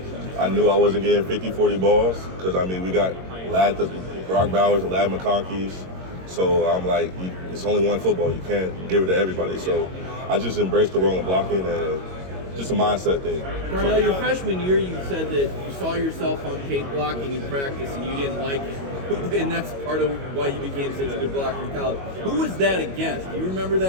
I knew I wasn't getting 50, 40 balls because, I mean, we got Brock Bowers and Lad McConkey's. So I'm like, it's only one football. You can't give it to everybody. So I just embraced the role of blocking and just a mindset thing. Darnell, your freshman year, you said that you saw yourself on tape blocking in practice and you didn't like it. And that's part of why you became such a good blocker in college. Who was that against? Do you remember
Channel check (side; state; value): left; late; 22 ms